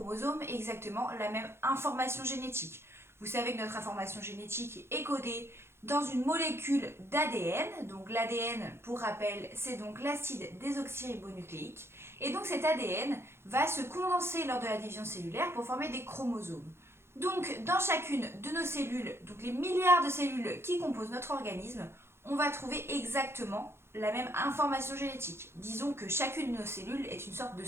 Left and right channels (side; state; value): left; late; 0.12 ms